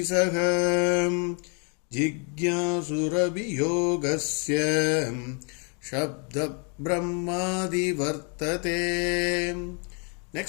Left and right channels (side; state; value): right; quieter; 36.9 dB